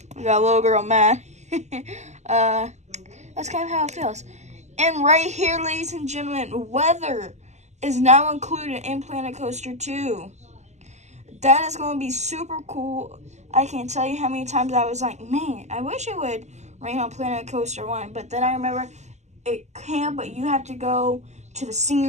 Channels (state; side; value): late; left; 0.33 ms